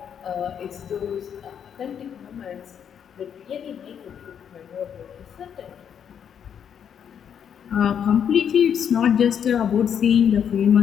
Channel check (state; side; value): quieter; right; 8.2 dB